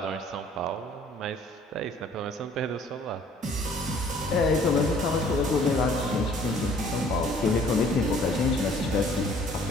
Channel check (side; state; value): both; normal; correlation 0.56